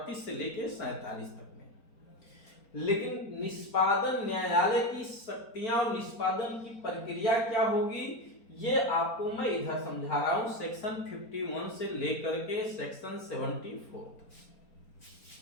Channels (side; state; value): right; late; 4.4 ms